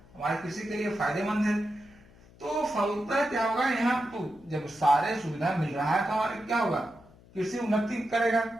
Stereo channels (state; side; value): noise; left; hum, 25 dB below the sound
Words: हमारे कृषि के लिए फायदेमंद है। तो फलतः क्या होगा, यहाँ तो जब सारे सुविधा मिल रहा है तो हमारे क्या होगा, कृषि उन्नति करेगा,